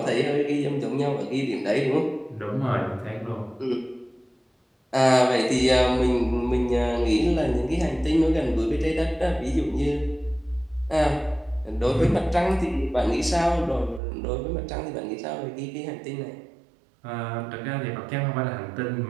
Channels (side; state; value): left; drops out; at 14.0 s